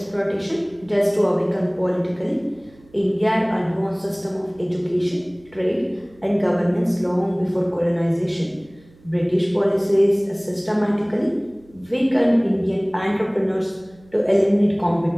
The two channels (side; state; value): right; noise; hum, 28 dB below the sound